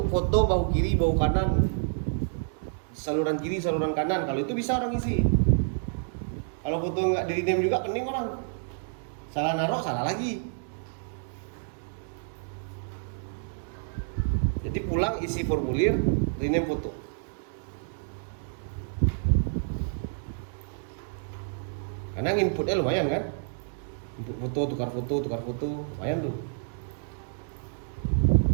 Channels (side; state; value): left; silent; digital silence